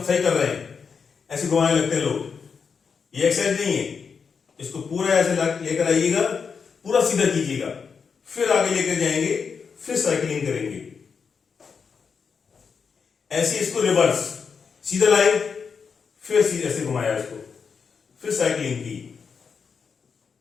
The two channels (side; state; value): right; quieter; 5.9 dB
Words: सही कर रहे हैं, ऐसे घुमाने लगते हैं लोग। ये एक्सरसाइज नहीं है, इसको पूरा ऐसे लेकर आइएगा, पूरा सीधा कीजिएगा, फिर आगे लेकर जाएंगे, फिर साइकिलिंग करेंगे। ऐसे इसको रिवर्स, सीधा लाए, फिर सीधे ऐसे घुमाया इसको, फिर साइकिलिंग की।